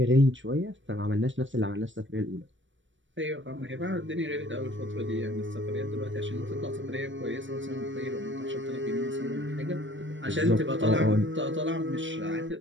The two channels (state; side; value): late; left; 0.55 ms